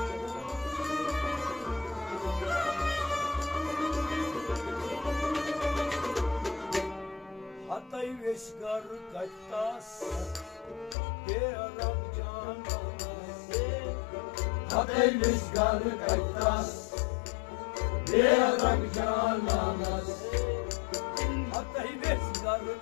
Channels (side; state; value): right; drops out; at 11.0 s